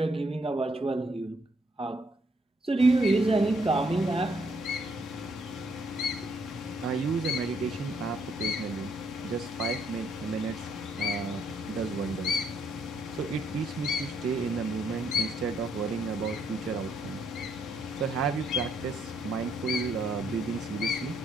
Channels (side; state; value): both; normal; correlation 0.71